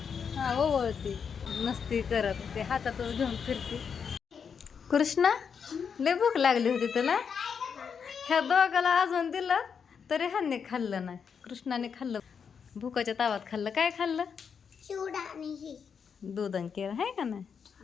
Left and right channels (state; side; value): quieter; right; 6.6 dB